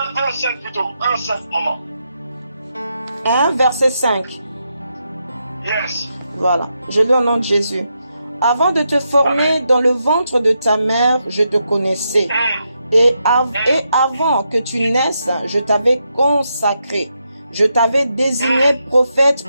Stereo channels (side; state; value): both; inverted; correlation -0.83